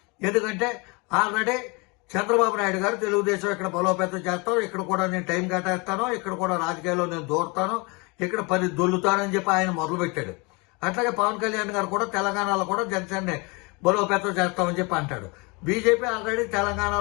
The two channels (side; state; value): right; quieter; 28.6 dB